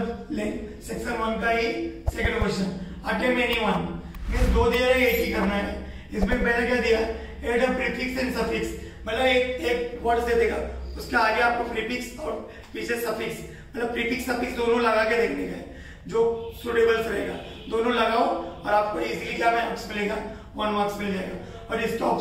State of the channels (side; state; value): both; identical; correlation 1.00